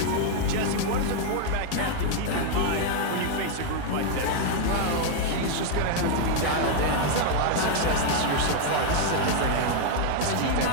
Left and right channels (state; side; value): different; both; correlation 0.00